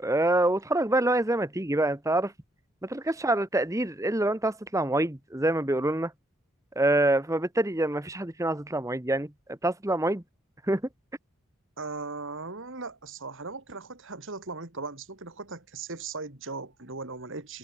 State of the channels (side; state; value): both; normal; correlation 0.71